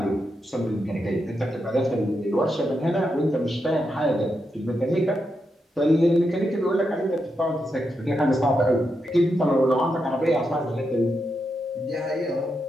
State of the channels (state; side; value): normal; both; correlation 0.85